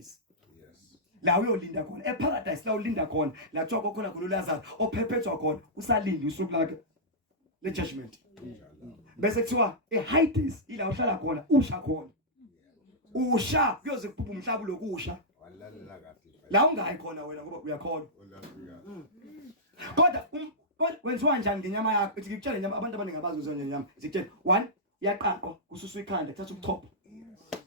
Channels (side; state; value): both; normal; correlation -0.14